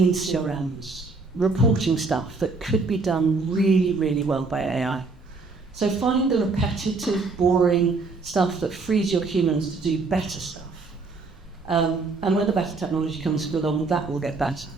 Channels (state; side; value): quieter; left; 4.0 dB